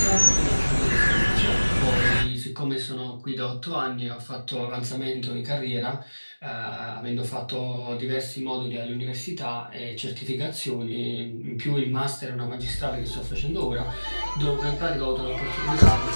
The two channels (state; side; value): inverted; both; correlation -1.00